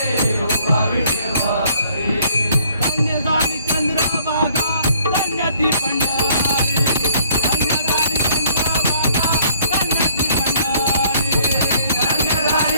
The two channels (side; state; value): both; inverted; correlation -0.61